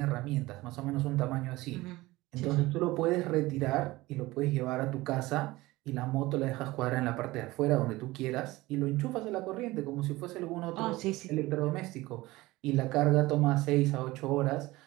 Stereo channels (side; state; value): left; quieter; 19.4 dB